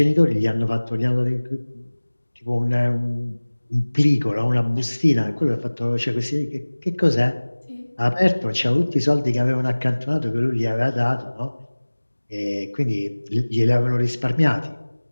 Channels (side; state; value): both; inverted; correlation -1.00